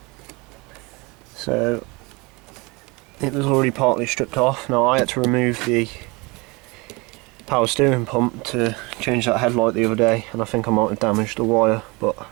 So it was already partly stripped off. Now I had to remove the power steering pump to change that headlight the other day, and I think I might have damaged the wire, but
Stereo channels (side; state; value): left; quieter; 26.2 dB